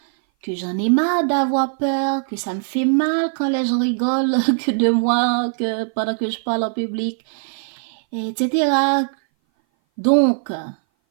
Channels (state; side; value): silent; left; 59 dB below the other